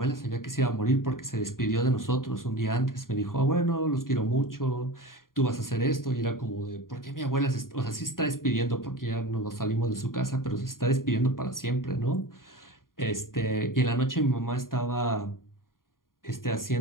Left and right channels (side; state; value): right; late; 0.91 ms